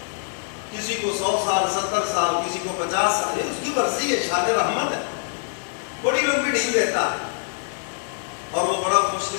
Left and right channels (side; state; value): right; silent; digital silence